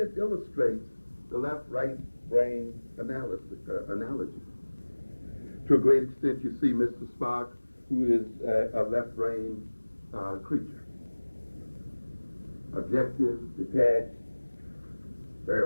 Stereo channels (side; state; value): both; inverted; correlation -1.00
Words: illustrates the left-right brain analogy. To a great extent, you see Mr. Spock, who is a left-brain creature. Objective, detached, very